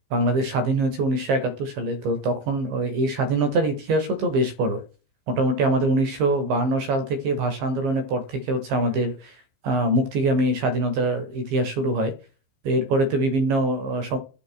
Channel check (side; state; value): left; late; 15 ms